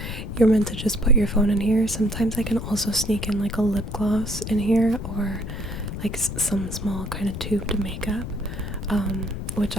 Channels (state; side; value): noise; left; rumble, 6 dB below the sound